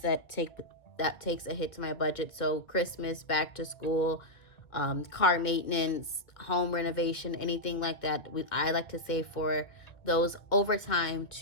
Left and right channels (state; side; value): late; right; 1.7 ms